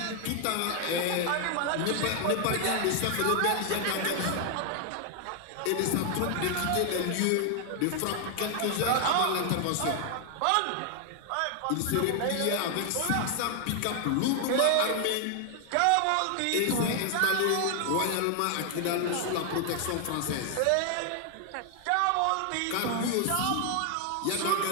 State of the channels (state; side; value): different; both; correlation 0.00